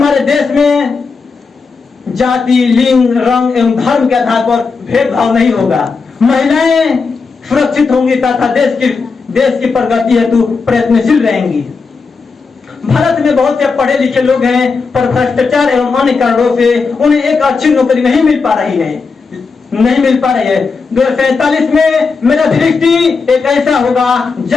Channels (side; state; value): right; quieter; 4.8 dB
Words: देश में जाति, लिंग, रंग एवं धर्म के आधार पर भेदभाव नहीं होगा। महिलाएं सुरक्षित होंगी तथा देश की प्रगति हेतु प्रयत्नशील रहेंगी। भारत में बहुत से पढ़े लिखे लोग हैं, पर भ्रष्टाचार एवं अन्य कारणों से उन्हें एक अच्छी नौकरी नहीं मिल पा रही है। 2047 में मेरा दृष्टि एक ऐसा होगा